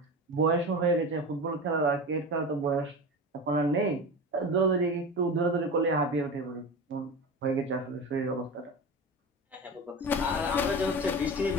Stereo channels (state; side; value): normal; both; correlation 0.28